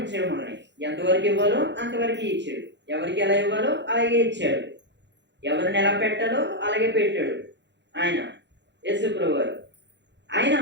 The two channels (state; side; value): late; left; 0.52 ms